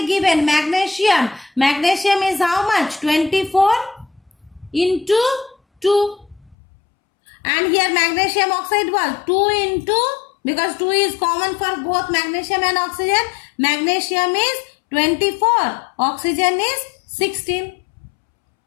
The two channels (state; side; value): drops out; right; at 6.6 s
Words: given magnesium. Magnesium is how much? 24 into 2. And here magnesium oxide was 2 into, because 2 is common for both magnesium and oxygen. Magnesium is 24. Oxygen is 16.